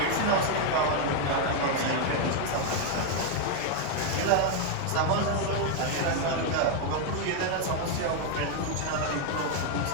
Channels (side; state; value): both; different; correlation 0.01